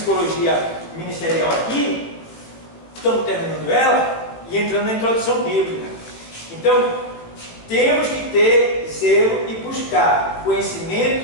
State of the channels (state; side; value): late; right; 18 ms